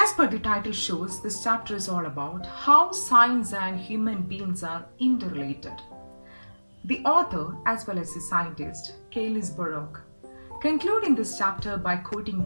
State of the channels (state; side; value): inverted; both; correlation -1.00